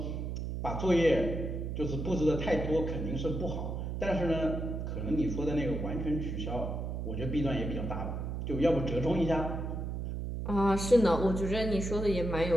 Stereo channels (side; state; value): right; noise; hum, 4 dB below the sound